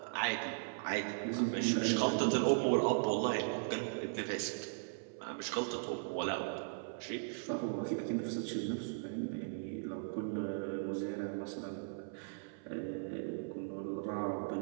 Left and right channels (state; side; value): silent; left; 52 dB below the other